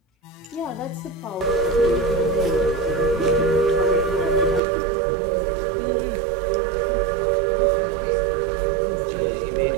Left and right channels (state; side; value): drops out; left; at 4.6 s